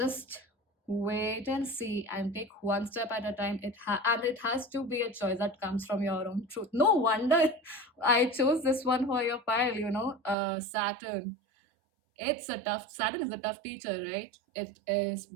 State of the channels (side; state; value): left; drops out; at 10.4 s